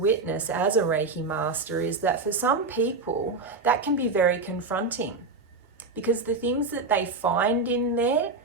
as a Reiki master is that for some people, that can be very confronting, because the things that they find in there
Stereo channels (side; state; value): left; quieter; 3.8 dB